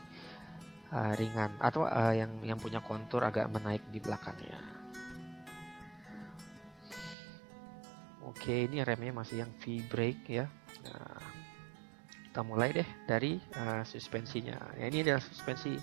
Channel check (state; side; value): drops out; left; at 7.2 s